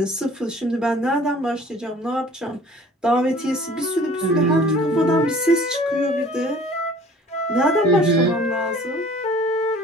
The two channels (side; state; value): both; normal; correlation 0.50